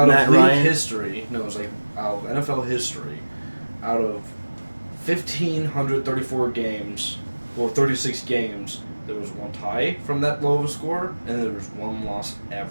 Matt of league Ryan? history. No, it was like out of NFL history. Out of 1,534 games, or 36 games, there was one tie from that low of a score, and there was one loss ever.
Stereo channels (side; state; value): both; inverted; correlation -1.00